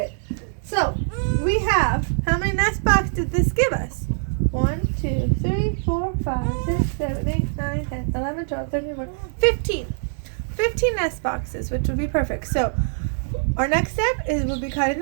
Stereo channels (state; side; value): silent; left; 61 dB below the other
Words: So we have, how many nest boxes did this give us? 1, 2, 3, 4, 5, 6, 7, 8, 9, 10, 11, 12, 13, 14, 15. 15 nest boxes, which would be perfect. So our next step is we'll be cutting